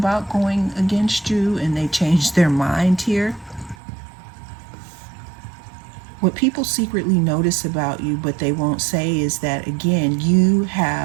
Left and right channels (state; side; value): drops out; left; at 3.8 s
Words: going against you and they changed their mind here. What people secretly notice about you, but they won't say, is that, again, you